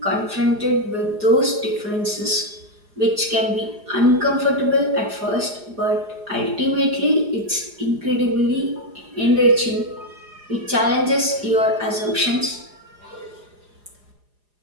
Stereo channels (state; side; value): late; left; 4.9 ms